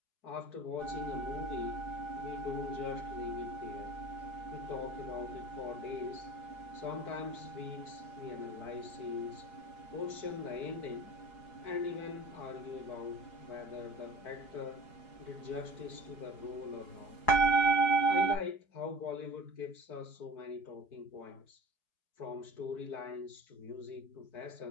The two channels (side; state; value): right; late; 4.8 ms